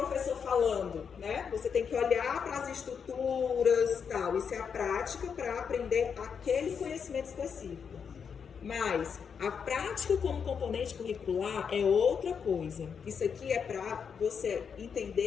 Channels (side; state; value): right; quieter; 6.7 dB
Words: falando, né? Você tem que olhar para as estruturas e tal. Isso é a prática para aprender aquele conhecimento específico. Mas a prática como componente curricular é outra coisa. Isso aqui é para você